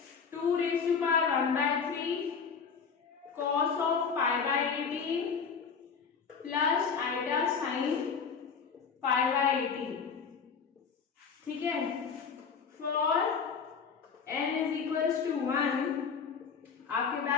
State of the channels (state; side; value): quieter; right; 6.0 dB